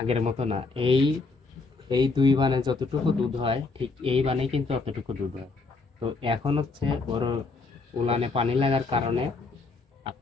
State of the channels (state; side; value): quieter; right; 3.9 dB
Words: মতো না। এই এই দুই বানে যতটুকু দুধ হয় ঠিক এই বানে কিন্তু অতটুকু দুধ হয়। তো এখন হচ্ছে বড় উলানে পানি লাগার কারণে